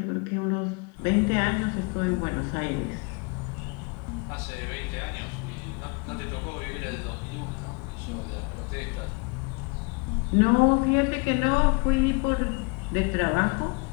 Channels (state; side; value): quieter; right; 32.3 dB